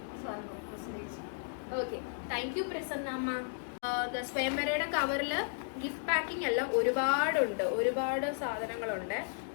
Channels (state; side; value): silent; right; digital silence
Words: പ്രസന്നേച്ചി. ഓക്കെ, താങ്ക് യു പ്രസന്നമ്മ. സ്വയംവരയുടെ കവറില് ഗിഫ്റ്റ് പാക്കിംഗ് എല്ലാം ഒരുപാടുണ്ട്, ഒരുപാട് സാധനങ്ങളുണ്ട്.